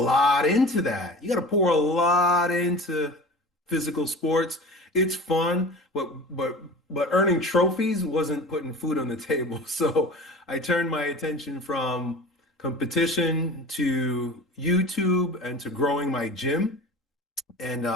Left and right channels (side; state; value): both; normal; correlation 0.37